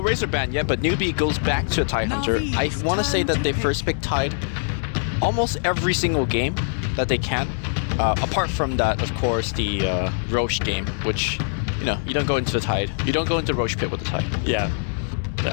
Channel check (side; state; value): right; silent; digital silence